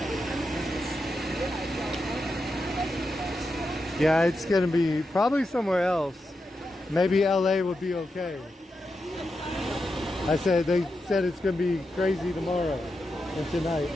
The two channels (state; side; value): normal; both; correlation 0.87